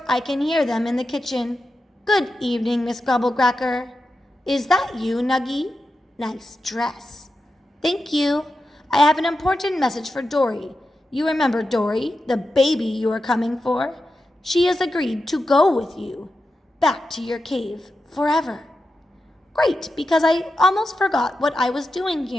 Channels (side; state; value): both; normal; correlation 0.90